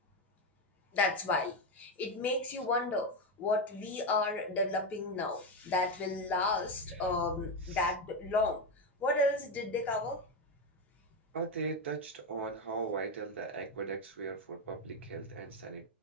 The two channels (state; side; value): normal; both; correlation 0.11